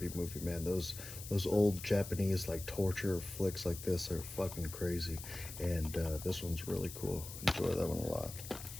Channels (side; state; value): left; noise; hiss, 11 dB below the sound